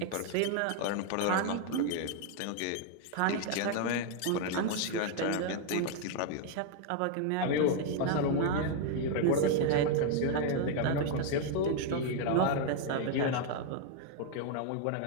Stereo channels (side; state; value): both; different; correlation 0.00